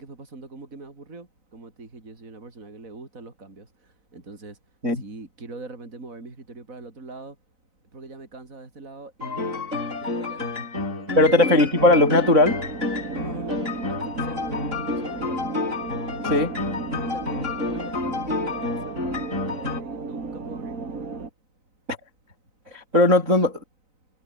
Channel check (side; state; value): left; late; 3.9 ms